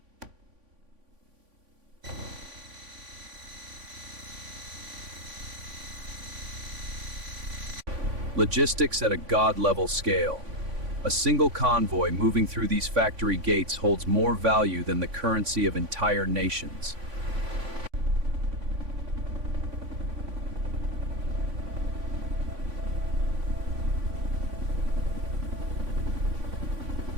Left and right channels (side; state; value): left; late; 3.5 ms